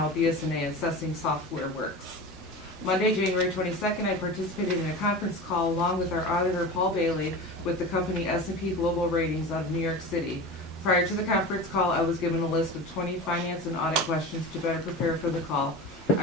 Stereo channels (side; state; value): both; normal; correlation 0.30